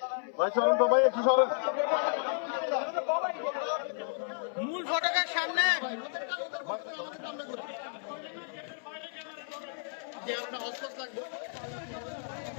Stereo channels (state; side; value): silent; right; 56 dB below the other